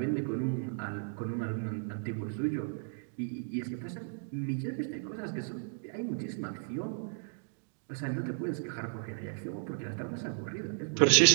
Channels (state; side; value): silent; left; digital silence